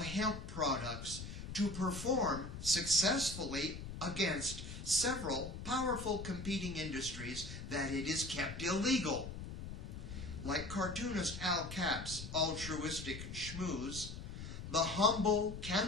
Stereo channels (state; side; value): noise; left; rumble, 9 dB below the sound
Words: hemp products to perform successfully against several powerful competing industries that it is kept illegal. Like cartoonist Al Cap's altruistic schmooze, the humble